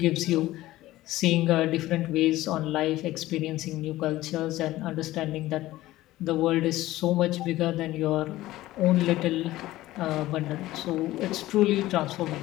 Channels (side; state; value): right; quieter; 16.4 dB